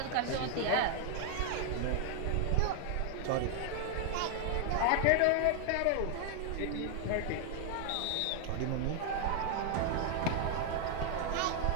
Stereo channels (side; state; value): both; different; correlation 0.00